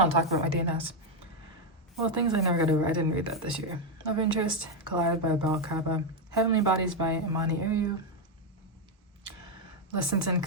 and talk about my DNFs. Well, things I never got over. I didn't read that this year. Love Interest, Collided by Bal Kaba. Heavenly Bodies by Imani Ayu. Lessons in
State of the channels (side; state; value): both; normal; correlation 0.04